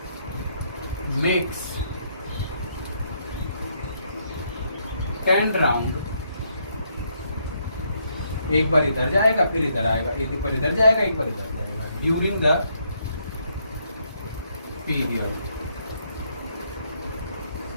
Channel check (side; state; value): both; inverted; correlation -0.73